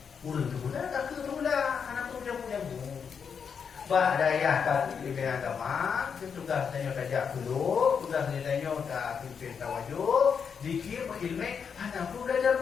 Urang tu pula, tak tu pula. Anak tu dia punya Bah daya kat ilmu agama, tugas tanya tajak dulu, tugas tanya tak pimpin tawajud, dikir ilmu, anak pun belajar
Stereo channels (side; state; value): right; quieter; 6.6 dB